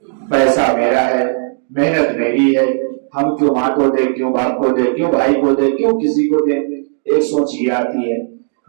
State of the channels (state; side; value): silent; left; digital silence